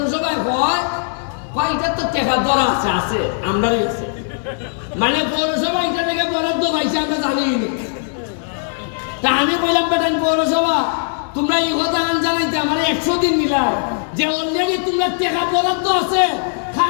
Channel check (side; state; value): right; silent; digital silence